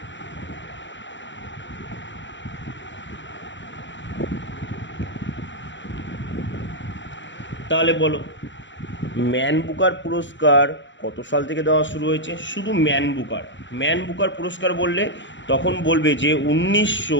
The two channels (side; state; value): right; late; 0.54 ms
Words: তাহলে বলো ম্যান বুকার পুরস্কার কত সাল থেকে দেওয়া শুরু হয়েছে? শুধু ম্যান বুকার পুরস্কার বললে তখন বলবে যে